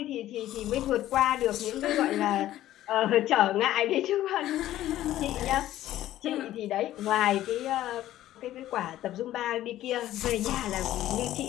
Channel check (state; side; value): quieter; right; 13.7 dB